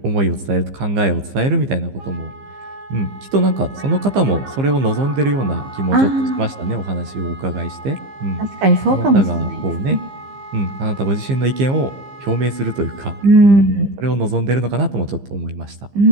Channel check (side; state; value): left; late; 15 ms